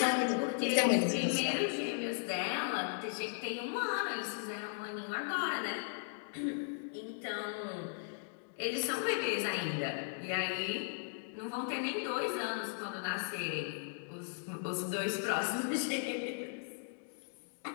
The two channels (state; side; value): silent; right; digital silence